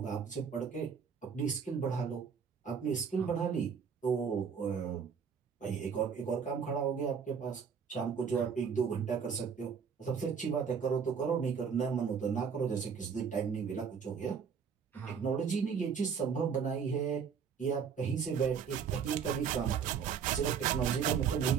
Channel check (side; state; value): left; quieter; 6.7 dB